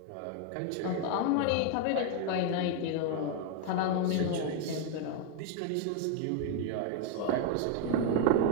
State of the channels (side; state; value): both; different; correlation 0.01